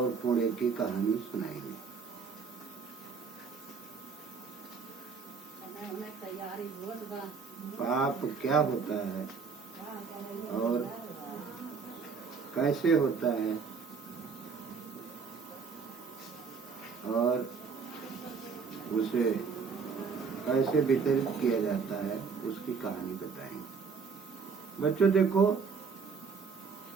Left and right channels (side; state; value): left; quieter; 5.5 dB